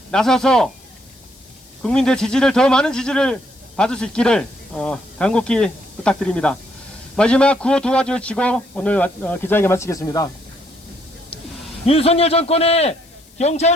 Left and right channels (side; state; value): left; noise; hiss, 28 dB below the sound